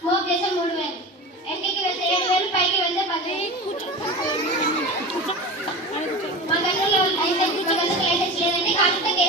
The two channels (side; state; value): both; normal; correlation 0.30